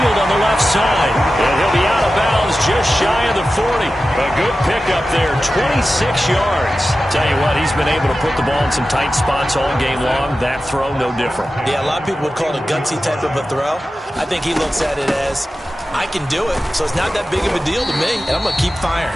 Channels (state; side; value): normal; both; correlation 0.94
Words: on the left side. And he'll be out of bounds just shy of the 40. A good pickup there, 26 yards. Tell you what, he's been able to put the ball in some tight spots all game long. That throw, no different. Yeah, a lot of people would call it a gutsy type of a throw. I think he looks at it as, I can do it, so it's not that big of a deal to me, and I'm going to keep firing.